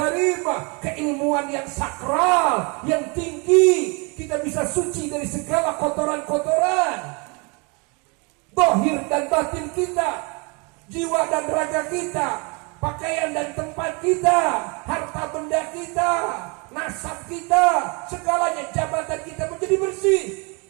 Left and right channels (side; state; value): left; quieter; 31.2 dB